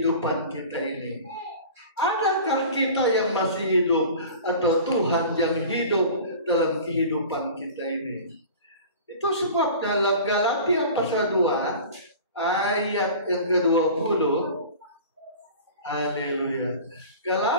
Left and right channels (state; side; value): inverted; both; correlation -0.39